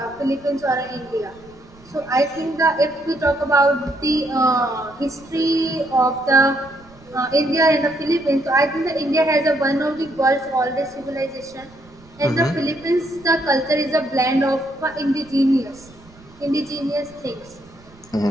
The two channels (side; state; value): right; noise; rumble, 25 dB below the sound